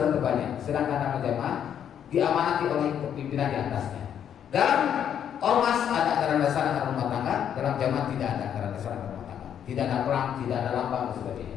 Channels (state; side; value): quieter; right; 9.1 dB